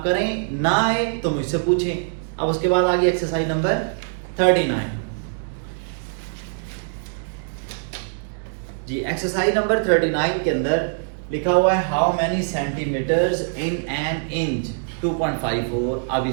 करें, ना आए तो मुझसे पूछें। अब उसके बाद आ गई exercise number 39 ji. Exercise number 39 के अंदर लिखा हुआ है how many centimetres in an inch 2.54। अब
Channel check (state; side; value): silent; left; digital silence